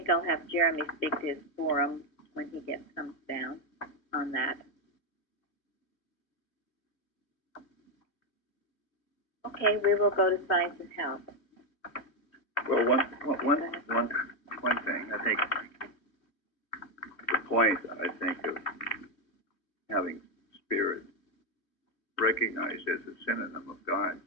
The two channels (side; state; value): right; late; 2.7 ms